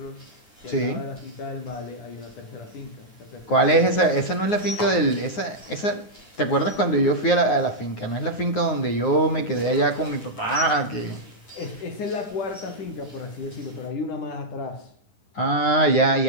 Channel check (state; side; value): late; right; 9.5 ms